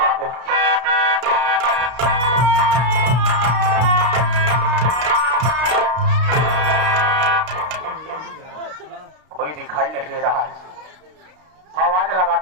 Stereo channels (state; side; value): late; left; 32 ms